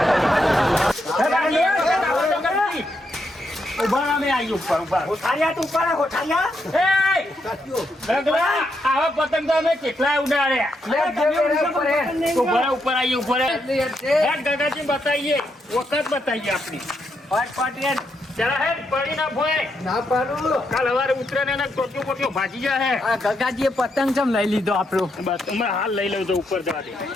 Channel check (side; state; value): both; normal; correlation 0.80